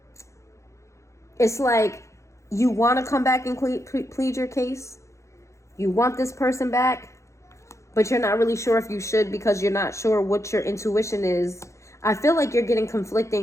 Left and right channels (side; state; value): right; late; 0.14 ms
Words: It's like you want to come back and plead your case. You want this person back, but you're not really sure if you should because you're not sure what your intuition is. I feel like you're getting